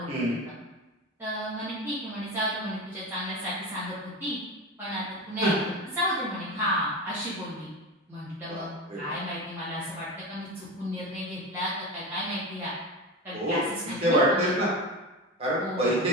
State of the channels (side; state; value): both; normal; correlation 0.24